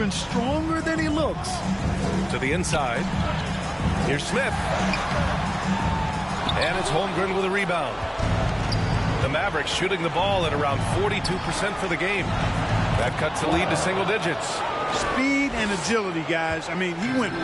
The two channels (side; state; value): both; identical; correlation 1.00